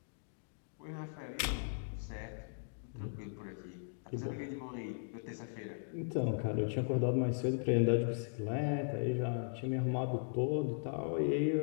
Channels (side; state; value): right; silent; digital silence